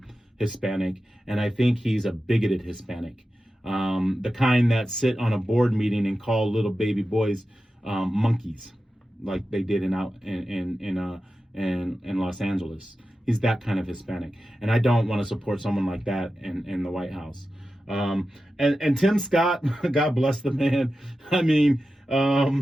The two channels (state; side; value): normal; both; correlation 0.92